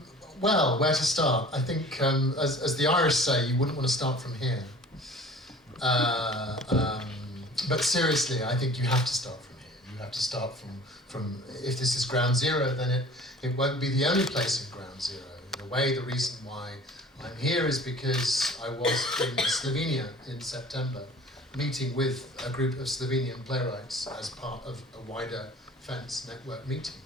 Well, where to start? I think, as the Irish say, you wouldn't want to start from here. But seriously, I think you have to start from here. You have to start from if this is ground zero, then it won't be the only place in ground zero. In a way, the reason why I'm here is because I was in Slovenia in September, meeting with a group of Slovenian playwrights as part of a wider Fence network meeting.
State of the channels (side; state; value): both; normal; correlation 0.45